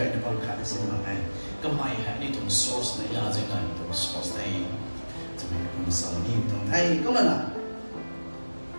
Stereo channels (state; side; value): inverted; both; correlation -1.00